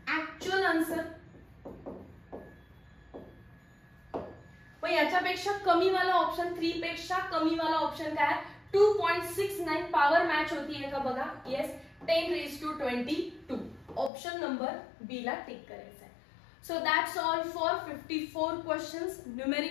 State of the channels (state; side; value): drops out; right; at 14.1 s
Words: actual answer. पण याच्यापेक्षा कमी वाला ऑप्शन 3 पेक्षा कमी वाला ऑप्शन काय? 2.69 पॉवर मॅच होतीये का बघा. Yes, 10 raised to 22. Option number B ला टिक करायचं आहे. So that's all for 54 questions.